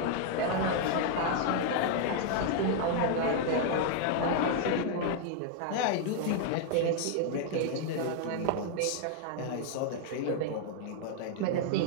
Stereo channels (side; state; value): both; different; correlation 0.00